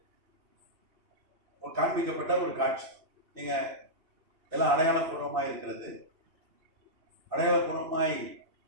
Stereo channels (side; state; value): left; late; 2.6 ms